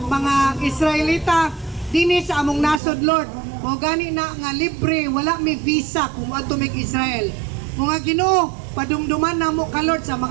mga Israelita dinhi sa among nasod, Lord. Mo gani na nga libre, wala may visa kung adto mig Israel. Mga Ginoo, padumduman namo ka Lord sa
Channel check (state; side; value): drops out; left; at 2.8 s